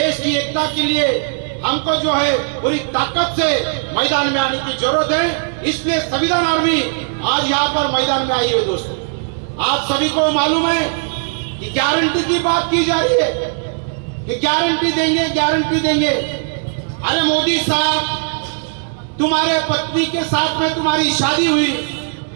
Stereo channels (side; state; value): left; silent; digital silence